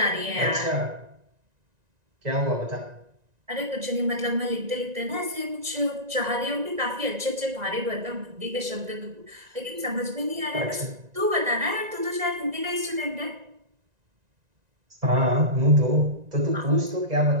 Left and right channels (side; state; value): left; late; 1.9 ms